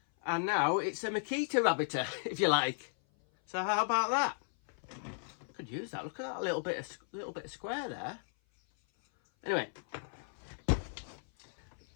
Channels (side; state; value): right; silent; 54 dB below the other